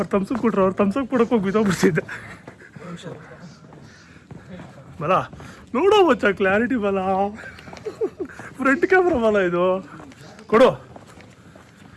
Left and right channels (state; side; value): identical; both; correlation 1.00